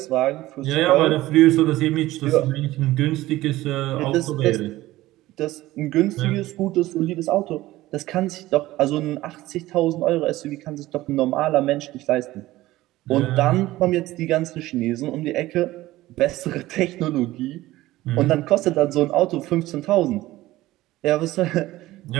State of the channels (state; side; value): quieter; left; 16.9 dB